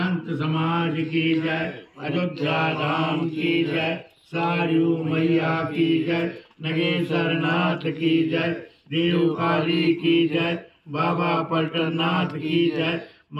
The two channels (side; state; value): both; identical; correlation 1.00